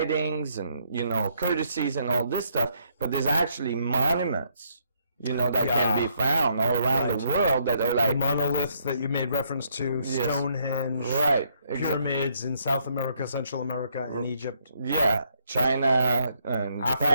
and, you know, courtesies and all this stuff, but there's actually monuments, you know, that can be found all around the world that are like the monoliths that you made reference to, Stonehenge, right, pyramids in South America, Central America, and Egypt. Yeah, China and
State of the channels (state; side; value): inverted; both; correlation -0.72